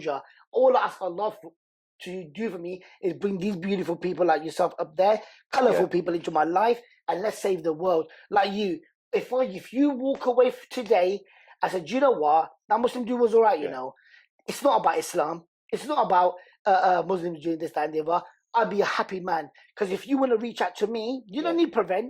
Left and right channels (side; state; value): both; identical; correlation 1.00